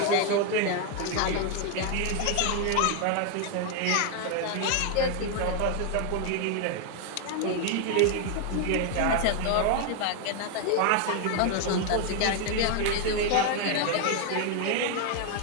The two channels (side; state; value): both; different; correlation 0.00